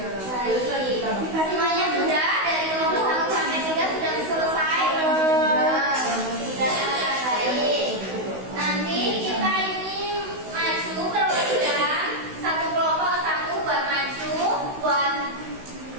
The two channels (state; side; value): late; left; 16 ms